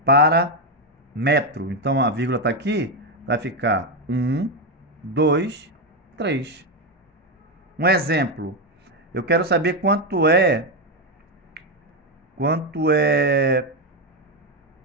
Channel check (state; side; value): normal; both; correlation 0.07